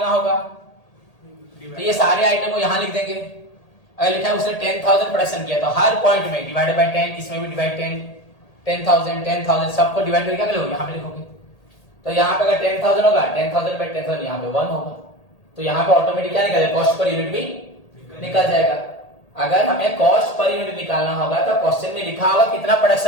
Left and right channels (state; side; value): late; right; 1.8 ms